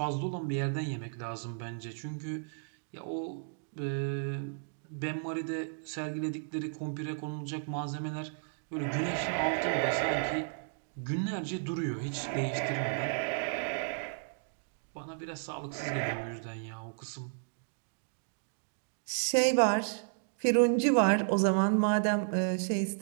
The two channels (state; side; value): silent; left; digital silence